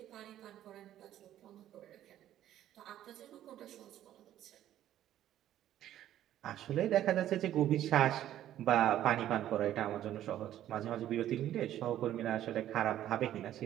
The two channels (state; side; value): quieter; left; 12.1 dB